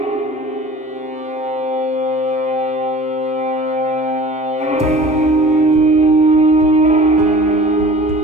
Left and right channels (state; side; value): normal; both; correlation 0.44